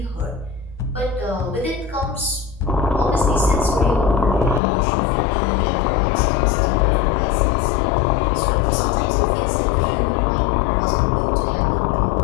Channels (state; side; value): drops out; right; at 4.6 s